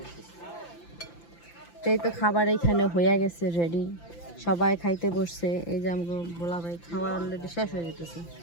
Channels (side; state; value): right; late; 5.9 ms